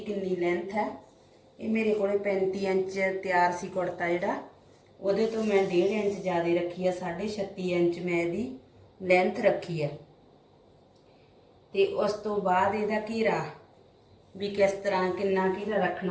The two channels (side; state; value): both; identical; correlation 1.00